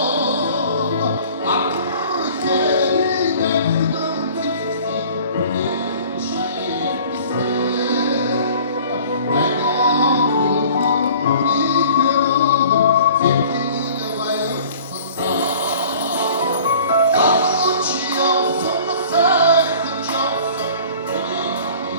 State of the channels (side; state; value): both; inverted; correlation -0.48